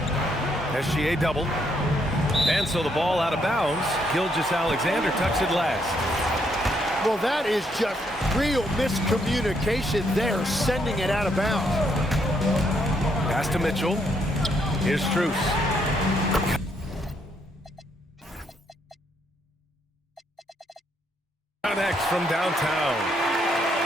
SGA double. And so the ball out of bounds. Gilgeous-Alexander tucks it last. Well, that is just real miscommunication there, sending it out of bounds. Pass to Mitchell. Here's Strus. Next from downtown.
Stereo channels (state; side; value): normal; both; correlation 0.73